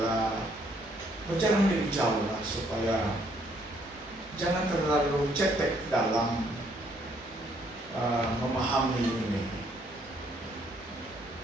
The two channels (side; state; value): both; normal; correlation 0.68